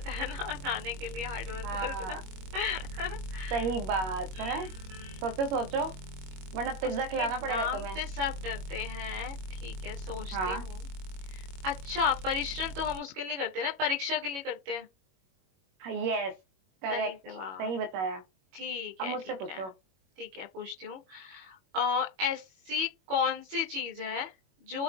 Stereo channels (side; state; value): left; late; 21 ms